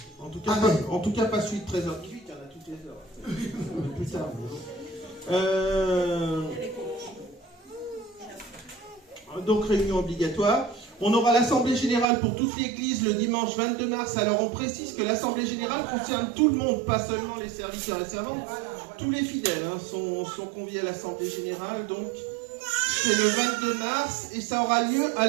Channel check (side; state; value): left; drops out; at 12.1 s